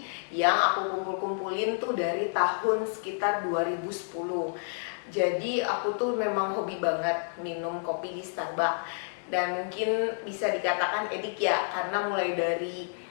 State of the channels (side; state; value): right; silent; digital silence